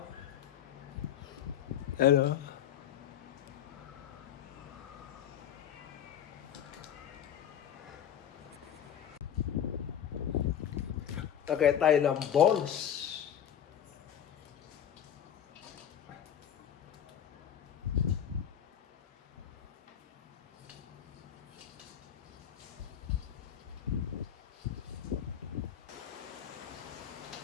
Ayan oh. Lagay tayo ng balls.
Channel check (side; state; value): right; quieter; 9.5 dB